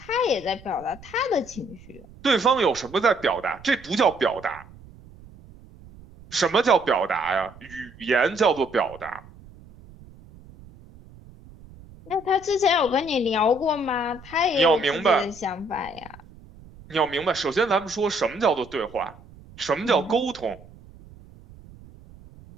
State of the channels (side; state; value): right; noise; rumble, 21 dB below the sound